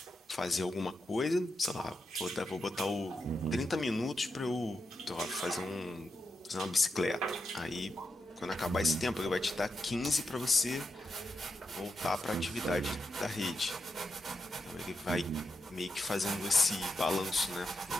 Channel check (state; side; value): normal; both; correlation 0.85